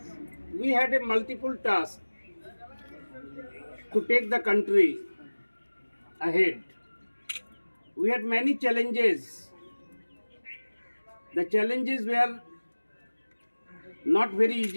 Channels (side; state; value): both; inverted; correlation -1.00